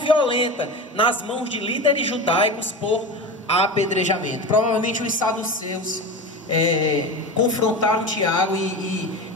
nas mãos de líderes judaicos por apedrejamento. Provavelmente os saduceus confrontaram Tiago e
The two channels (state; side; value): normal; both; correlation 0.27